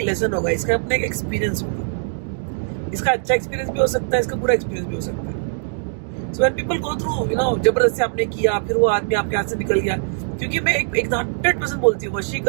लेसन होगा, इसका अपना एक एक्सपीरियंस होगा। इसका अच्छा एक्सपीरियंस भी हो सकता है, इसका बुरा एक्सपीरियंस भी हो सकता है। So when people go through, जबरदस्ती आपने किया, फिर वो आदमी आपके हाथ से निकल गया। क्योंकि मैं एक 100% बोलती हूँ,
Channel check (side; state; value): left; silent; digital silence